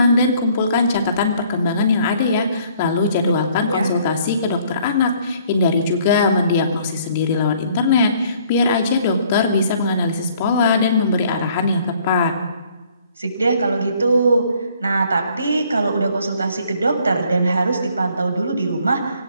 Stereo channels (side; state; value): both; inverted; correlation -0.60